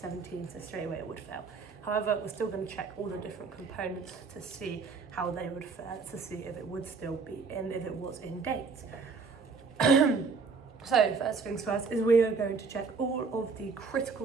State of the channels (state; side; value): quieter; left; 4.9 dB